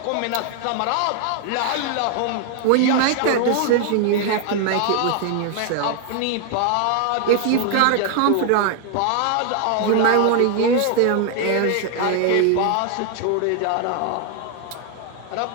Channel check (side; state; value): both; different; correlation 0.00